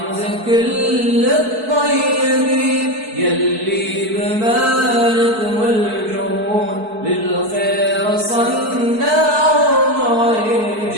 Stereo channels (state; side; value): late; left; 4.6 ms